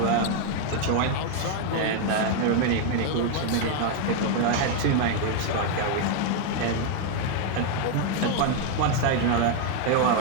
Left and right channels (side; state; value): both; different; correlation 0.00